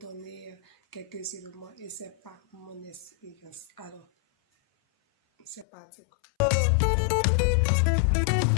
quelques éléments et c'est pas mon expérience. Alors, c'est parti.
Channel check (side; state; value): right; drops out; at 5.7 s